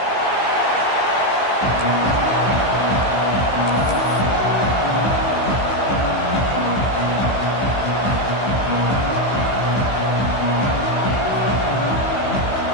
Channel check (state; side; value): late; right; 15 ms